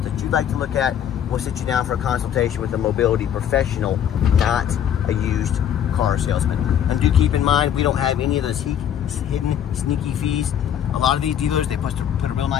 that you'd like to look at. We'll sit you down for a consultation with a mobility professional, not a used car salesman. And do keep in mind, we don't have any of those hidden sneaky fees. A lot of these dealers, they put a real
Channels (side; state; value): right; quieter; 9.5 dB